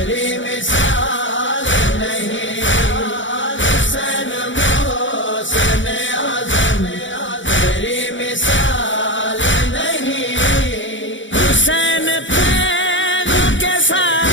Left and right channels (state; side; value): late; right; 0.55 ms